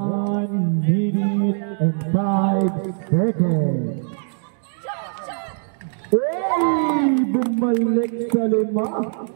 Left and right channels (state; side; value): silent; left; digital silence